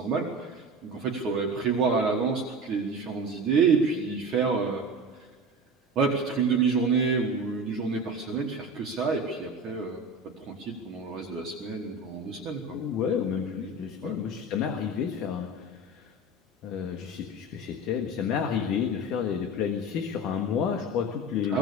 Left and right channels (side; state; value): both; normal; correlation 0.31